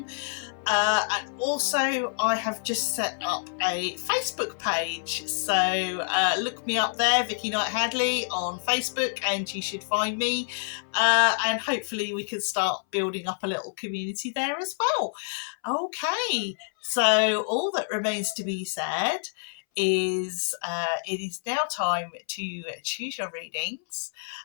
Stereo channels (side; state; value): right; silent; 60 dB below the other